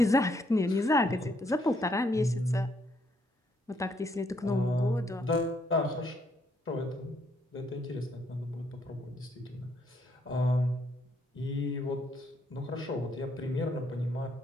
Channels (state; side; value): normal; both; correlation 0.72